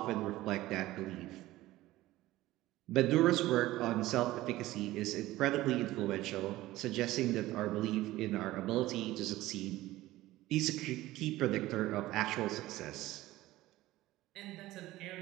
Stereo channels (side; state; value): left; quieter; 16.8 dB